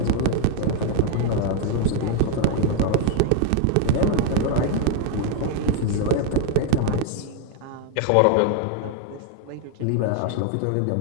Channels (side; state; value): both; different; correlation 0.00